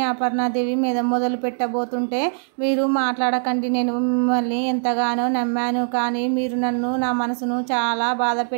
అపర్ణాదేవి మీద మొదలు పెట్టబోతుంటే, మీరు మాట్లాడకండి, నేను మిమ్మల్ని ఎంతగానో నమ్మాను, కానీ మీరు నన్ను నా మనసును చాలా బాధ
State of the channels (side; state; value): left; silent; digital silence